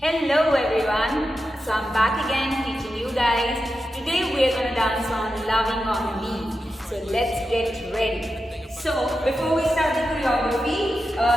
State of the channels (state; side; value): normal; both; correlation 0.90